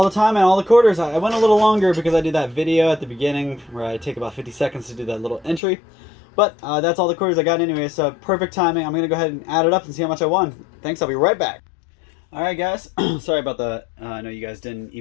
the time and all the quarters. I went a little longer because I did that video at the beginning where I take about 50 seconds to do that little entry. But that's all the quarters I got anyway, so perfect timing. I'm going to go ahead and add it up and see how much I won. Thanks, I'll be right back. Alright guys, sorry about the, I know you guys didn't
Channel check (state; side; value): drops out; right; at 5.6 s